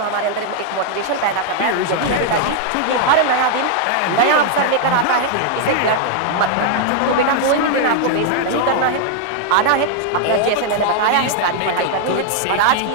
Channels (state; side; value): different; both; correlation 0.00